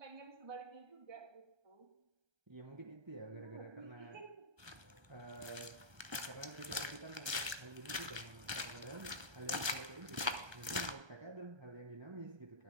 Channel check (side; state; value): left; late; 1.3 ms